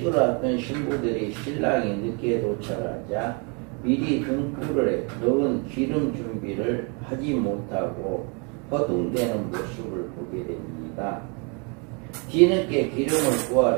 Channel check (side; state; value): left; quieter; 34.0 dB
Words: 앞둔 신부들이 신랑이 늦게 도착하자 미리 등불에 넣은 기름 준비를 하지 못하고 허둥대는 모습을 보게 됩니다. 뒤늦게 기름을